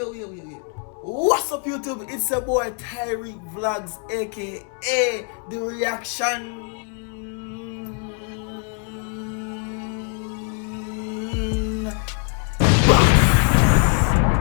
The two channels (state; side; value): quieter; right; 40.0 dB